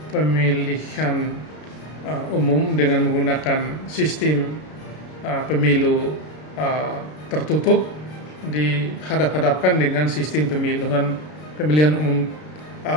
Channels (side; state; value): right; late; 33 ms